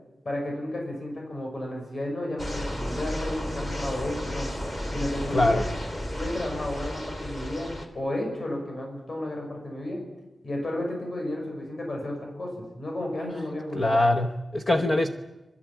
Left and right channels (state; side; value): normal; both; correlation 0.93